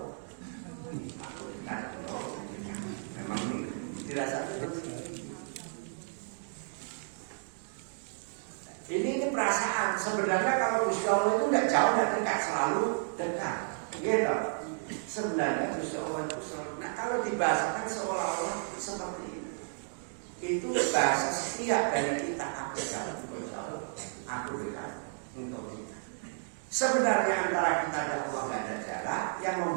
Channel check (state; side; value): silent; left; digital silence